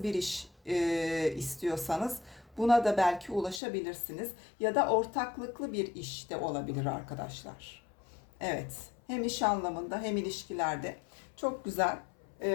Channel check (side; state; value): right; drops out; at 3.6 s